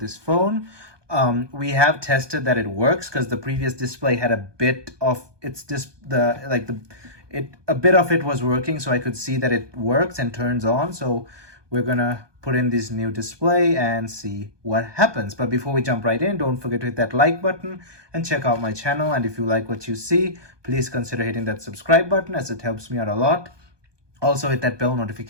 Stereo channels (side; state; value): left; late; 1.2 ms